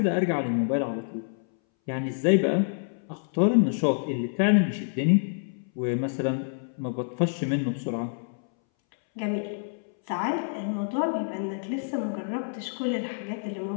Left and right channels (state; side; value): silent; right; 60 dB below the other